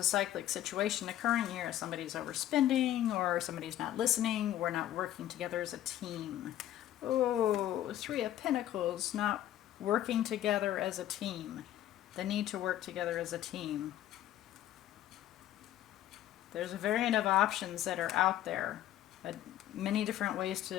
cyclic situation occurring here. Somebody's overspending or somebody's not listening. We're not working together as a team. Oh, Three of Pentacles, not working together as a team. The need to work together as a team. There's a variant of options that are out there. Many different ways to,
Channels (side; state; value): right; quieter; 12.7 dB